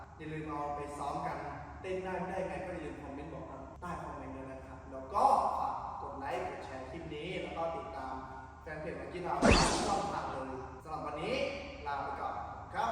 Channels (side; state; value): both; identical; correlation 1.00